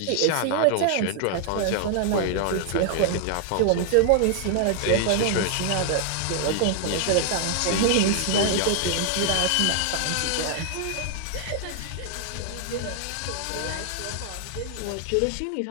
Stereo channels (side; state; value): both; different; correlation 0.00